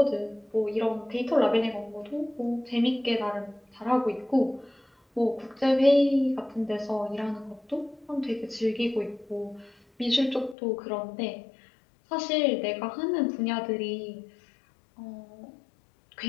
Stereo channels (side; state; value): right; drops out; at 10.6 s